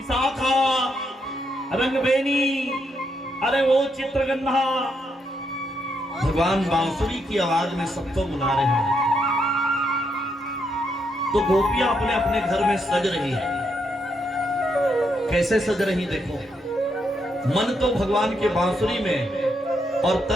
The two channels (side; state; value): both; normal; correlation 0.78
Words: रंगबेनी, अरे वो चित्रगंधा, भगवान बांसुरी की आवाज में सबको बुला रहे हैं। तो गोपियां अपने अपने घर में सज रही है। कैसे सज रही देखो, मन तो भगवान के बांसुरी में और